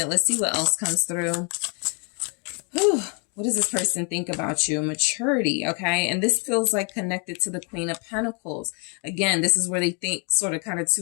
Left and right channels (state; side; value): quieter; right; 36.3 dB